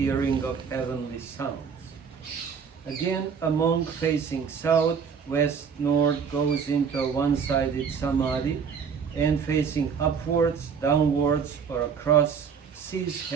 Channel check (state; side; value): quieter; left; 6.5 dB